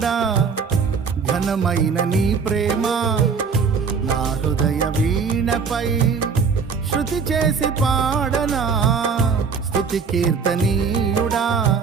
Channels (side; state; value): left; quieter; 5.7 dB